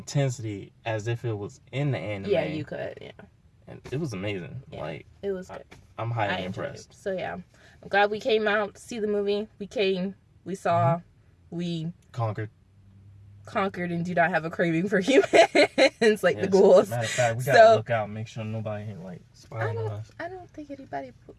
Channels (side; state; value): both; identical; correlation 1.00